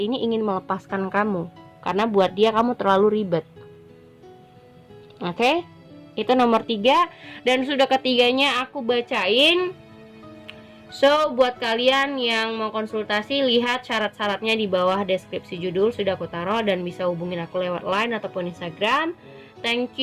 ini ingin melepaskan kamu. Karena buat dia kamu terlalu ribet. Oke? Itu nomor 3. Dan sudah ketiganya aku bacain. So, buat kalian yang mau konsultasi, lihat syarat-syaratnya di bawah deskripsi judul sudah aku taruh, dan bisa hubungin aku lewat Line ataupun Instagram. Thank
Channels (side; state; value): both; identical; correlation 1.00